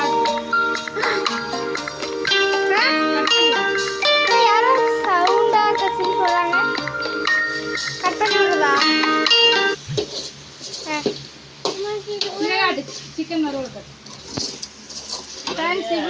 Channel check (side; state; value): both; identical; correlation 1.00